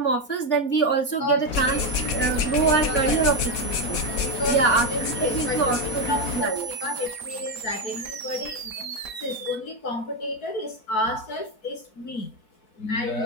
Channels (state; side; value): late; right; 4.2 ms